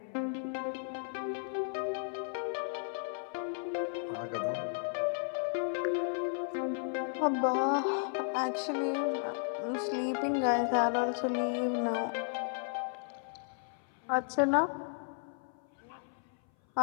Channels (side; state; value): right; silent; 55 dB below the other